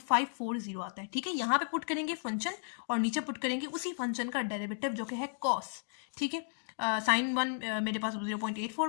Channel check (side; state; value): right; silent; digital silence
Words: आता है। ठीक है, यहाँ पे पुट करेंगे फंक्शन और नीचे पुट करेंगे उसी फंक्शन का डेरिवेटिव जो कि है कॉस। ठीक है, साइन 1 मेरे पास